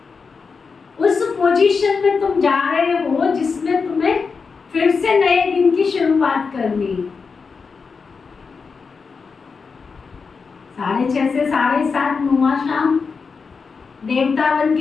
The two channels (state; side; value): quieter; right; 5.1 dB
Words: उस पोजीशन में तुम जा रहे हो जिसमें तुम्हें फिर से नए दिन की शुरुआत करनी है। 6:30 से 7:30 नुमा शाम देवता बन